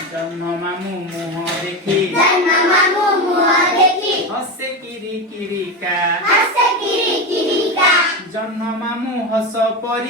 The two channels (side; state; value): both; normal; correlation 0.17